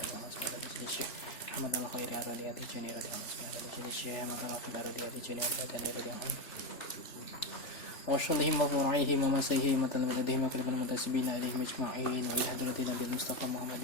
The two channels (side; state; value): right; late; 3.1 ms